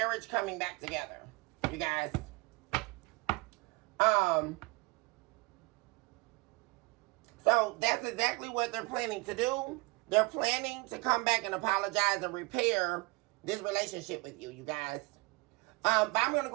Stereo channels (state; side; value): quieter; left; 25.0 dB